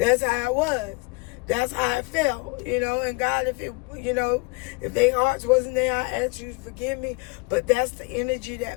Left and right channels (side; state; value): right; quieter; 28.4 dB